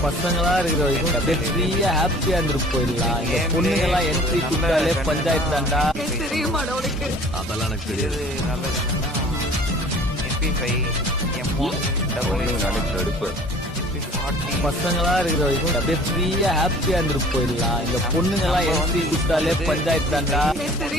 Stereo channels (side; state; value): both; normal; correlation 0.49